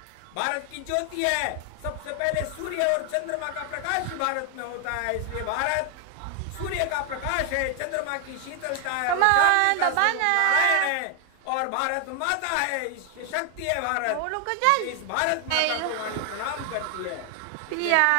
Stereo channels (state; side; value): different; both; correlation 0.00